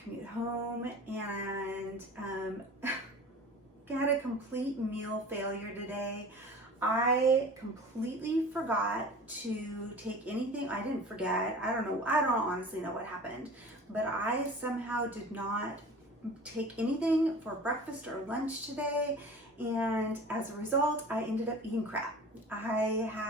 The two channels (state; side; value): normal; both; correlation 0.40